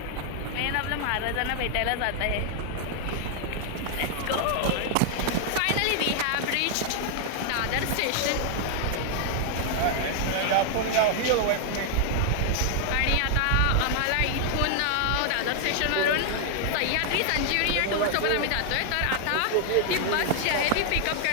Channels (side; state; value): both; different; correlation 0.00